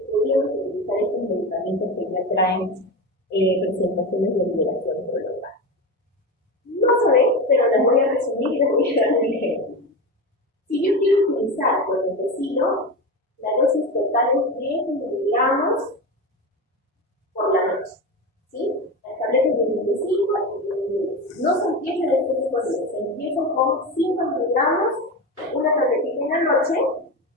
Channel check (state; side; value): normal; both; correlation 0.22